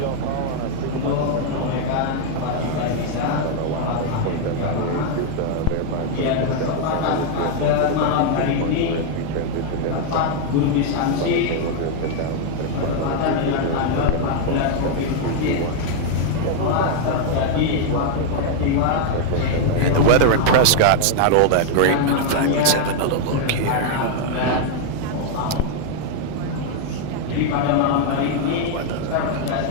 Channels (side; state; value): both; different; correlation 0.00